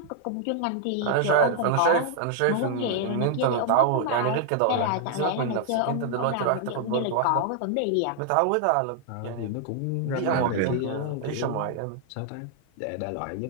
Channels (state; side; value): different; both; correlation -0.01